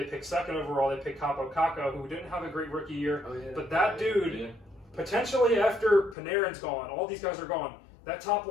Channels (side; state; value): right; drops out; at 6.2 s